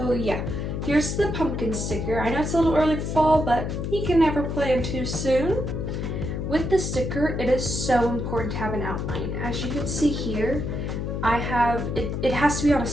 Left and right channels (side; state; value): left; noise; hum, 3 dB below the sound